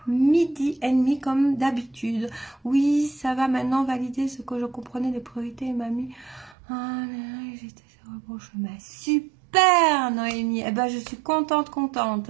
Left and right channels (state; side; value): drops out; left; at 6.6 s